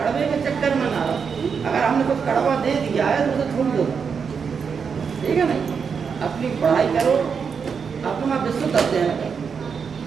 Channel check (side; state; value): left; quieter; 6.2 dB